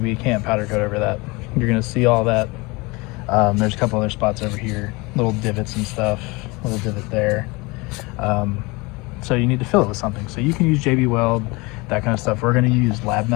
can't powder coat over that. You're gonna see all that. There's a couple other spots over here, little divots and stuff, a little divot there. So you need to fill it with something. So you can use JB Weld, that kind of stuff. We're going to use lab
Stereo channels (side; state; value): right; quieter; 25.1 dB